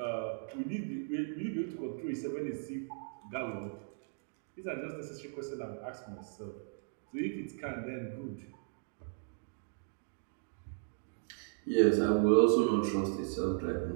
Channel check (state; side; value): silent; left; digital silence